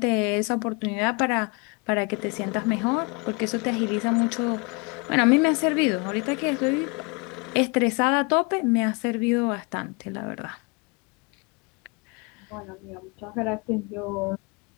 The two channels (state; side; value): quieter; right; 30.4 dB